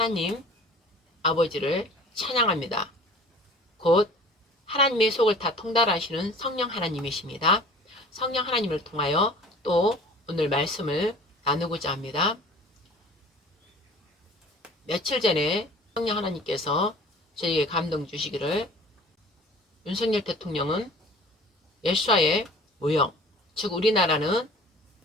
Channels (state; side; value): normal; both; correlation 0.45